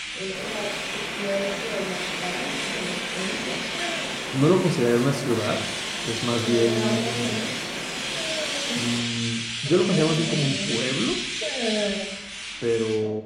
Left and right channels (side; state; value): both; identical; correlation 1.00